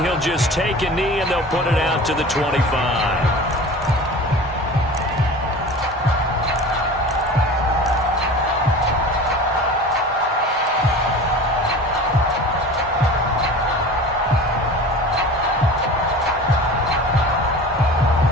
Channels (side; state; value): both; normal; correlation 0.37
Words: he'll just take a knee and they'll put it out to the 25.